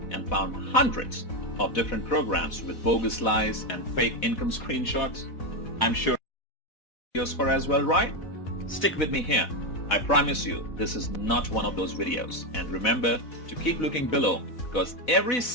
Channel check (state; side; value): late; right; 4.0 ms